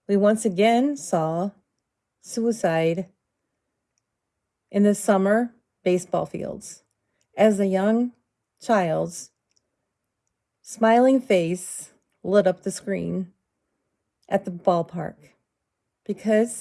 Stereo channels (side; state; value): both; identical; correlation 1.00